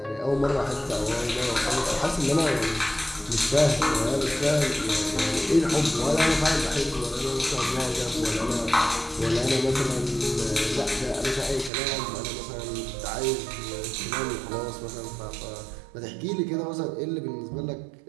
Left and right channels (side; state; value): left; drops out; at 11.7 s